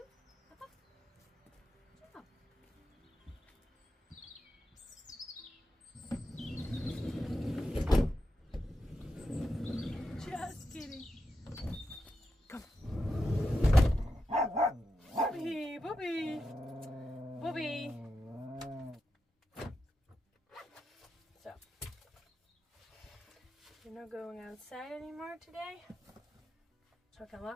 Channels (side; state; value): both; normal; correlation 0.87